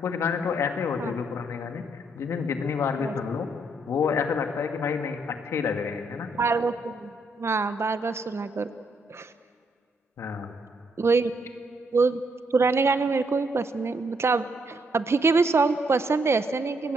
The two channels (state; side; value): normal; both; correlation 0.74